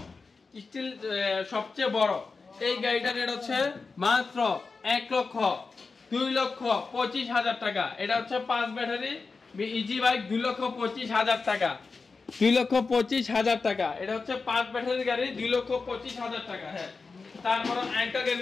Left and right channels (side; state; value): right; quieter; 4.4 dB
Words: স্টিল, সবচেয়ে বড়। এই গাড়িটার রেট হচ্ছে মাত্র 1,02,25,000 টাকা। এটা হচ্ছে 5 ব্যাটারি ইজি বাইক, 2,25,000 টাকা, 2,25,000 টাকা। এটা হচ্ছে 5 ব্যাটারি গাড়ি, 2,25,000 টাকা। হ্যাঁ, তারপর আরেকটা গাড়ি